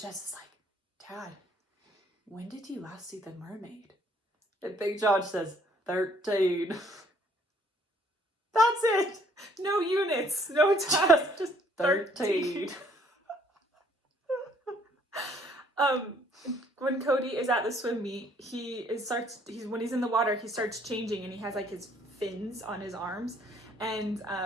is like, Dad, when did you last see the mermaid? And Big John says, 13. That's it. No units, no time, just 13. When Cody is at the swim meet, when he's in the water, he starts changing and he has like his fins on his arms, and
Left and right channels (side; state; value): both; normal; correlation 0.63